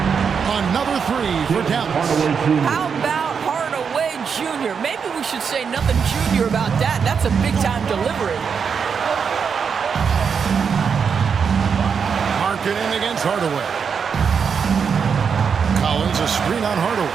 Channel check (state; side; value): quieter; left; 6.4 dB